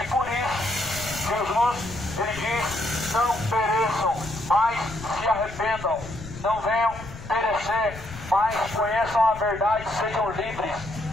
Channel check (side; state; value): left; noise; rumble, 13 dB below the sound